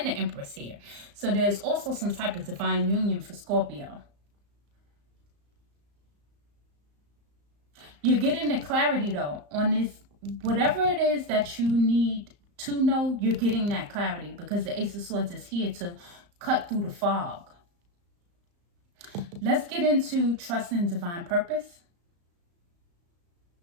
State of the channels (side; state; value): left; late; 34 ms